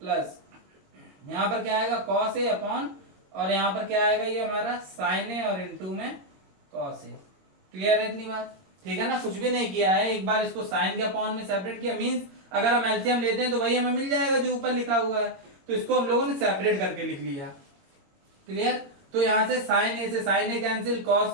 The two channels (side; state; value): left; late; 22 ms